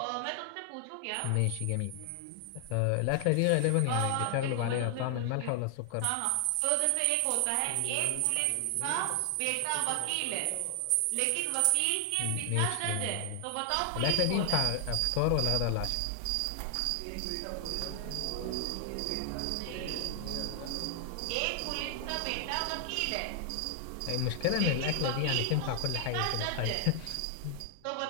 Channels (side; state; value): both; different; correlation 0.00